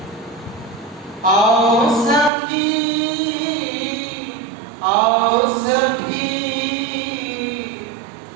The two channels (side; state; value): left; drops out; at 2.3 s